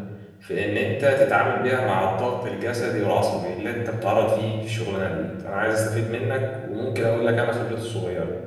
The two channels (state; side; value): identical; both; correlation 1.00